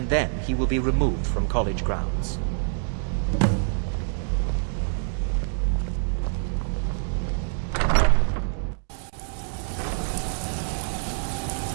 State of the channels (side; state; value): left; silent; 61 dB below the other